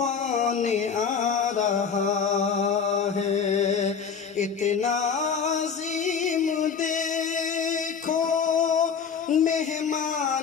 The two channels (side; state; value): right; quieter; 6.4 dB